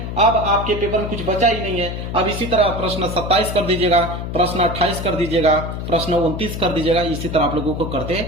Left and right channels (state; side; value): noise; left; hum, 6 dB below the sound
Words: अब आपके पेपर में कुछ बचा ही नहीं है। अब इसी तरह प्रश्न 27 कर दीजिएगा, प्रश्न 28 कर दीजिएगा, प्रश्न 29 कर दीजिएगा। इसी तरह आप लोगों को करते